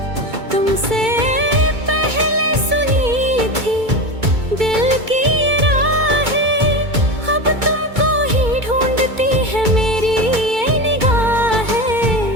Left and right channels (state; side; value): late; left; 2.2 ms